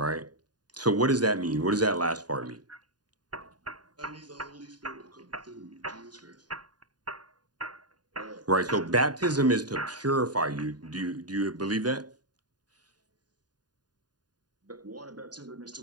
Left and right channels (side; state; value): left; late; 0.70 ms